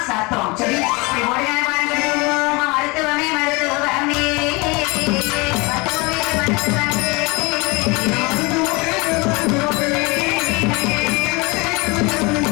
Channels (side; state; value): right; quieter; 26.2 dB